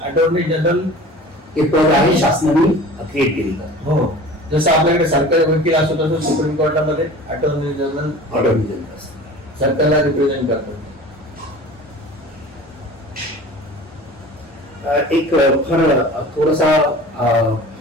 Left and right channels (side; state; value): both; normal; correlation 0.40